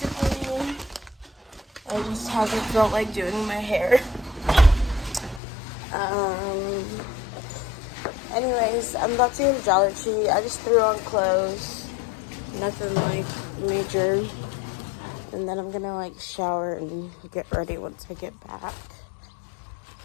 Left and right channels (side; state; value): right; drops out; at 5.4 s